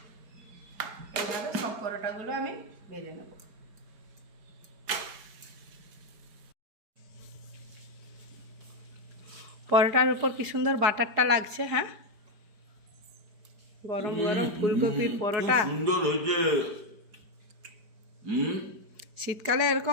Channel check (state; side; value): late; left; 4.8 ms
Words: এইভাবে সব পরোটাগুলো আমি ভেজে নেব। পরোটার উপর কি সুন্দর বাটারটা লাগছে। হ্যাঁ, গরম গরম ফুলকপির পরোটা। সুন্দর হয়েছে। শীতকালে